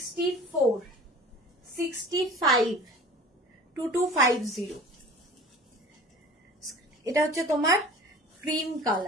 65, 2250। এটা হচ্ছে তোমার ক্রিম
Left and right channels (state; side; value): normal; both; correlation 0.43